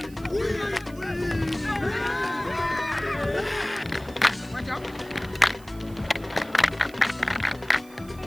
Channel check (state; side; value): noise; right; hiss, 24 dB below the sound